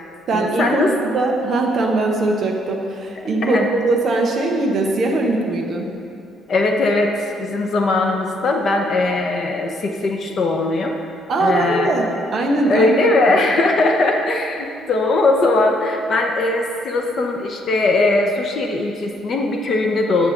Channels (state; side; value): normal; both; correlation 0.70